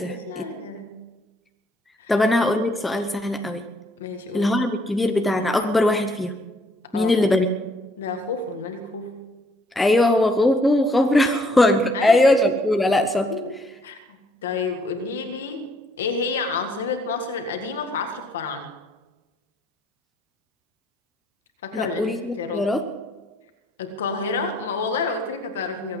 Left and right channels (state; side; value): normal; both; correlation 0.66